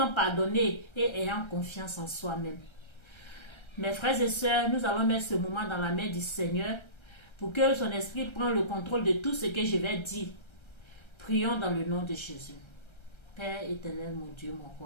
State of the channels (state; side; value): late; right; 1.3 ms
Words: pardonner et ayant confiance en soi-même. Mes frères et sœurs, nous allons mettre ce moment dans la main du Seigneur pour que son esprit prenne le contrôle de tout ce que je vais dire. Prions dans le nom de Jésus. Père éternel, mon Dieu, mon